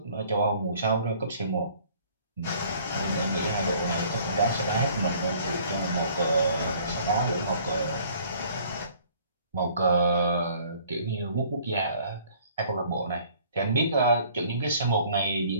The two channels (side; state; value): both; inverted; correlation -0.56